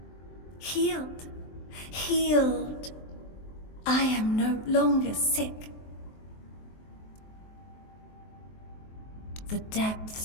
Healed. Healed. I am no longer sick. The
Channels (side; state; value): right; late; 23 ms